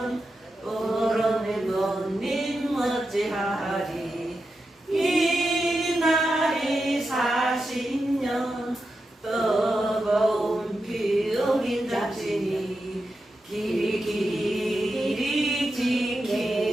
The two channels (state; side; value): normal; both; correlation 0.89